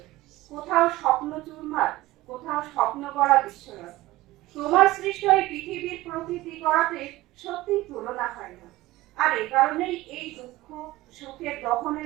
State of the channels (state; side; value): quieter; left; 18.0 dB